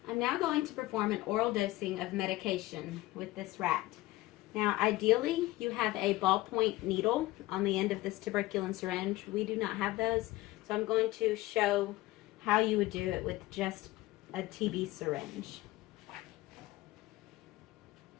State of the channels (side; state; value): right; quieter; 18.3 dB